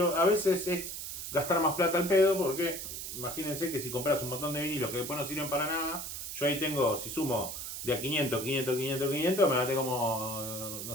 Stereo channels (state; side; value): noise; right; hiss, 7 dB below the sound